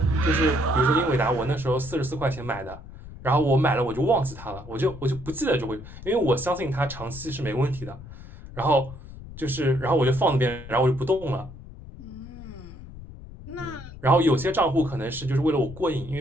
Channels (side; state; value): left; noise; rumble, 15 dB below the sound